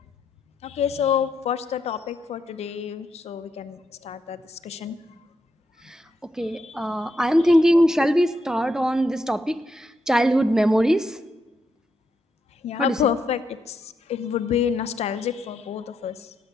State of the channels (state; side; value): normal; both; correlation 0.81